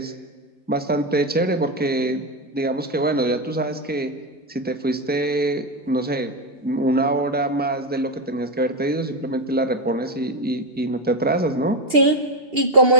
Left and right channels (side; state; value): both; normal; correlation 0.10